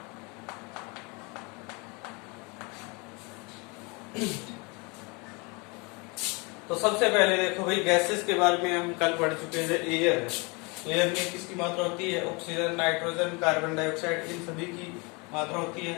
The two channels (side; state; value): right; quieter; 29.2 dB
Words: तो सबसे पहले देखो भाई, गैसेस के बारे में हम कल पढ़ चुके हैं। एयर है, एयर में किसकी मात्रा होती है? ऑक्सीजन, नाइट्रोजन, कार्बन डाइऑक्साइड, इन सभी की मात्रा होती